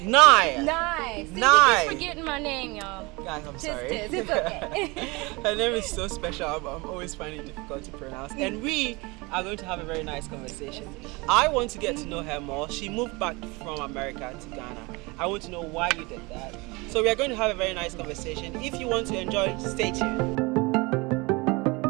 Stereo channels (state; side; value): quieter; left; 25.5 dB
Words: See, Nice. you keep forgetting my name, y'all. Guys, I'm sorry. It's okay. Her name is so special. I'm always finding it difficult to pronounce. And we are going to have a very nice conversation. I want to get to know her more. She moved back from America to Ghana. I want to know why you did that. So we are going to have a very nice conversation. If you want to enjoy, stay tuned.